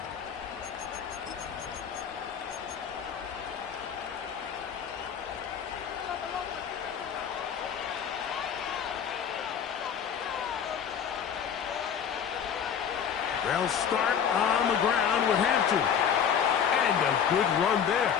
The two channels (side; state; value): right; quieter; 7.9 dB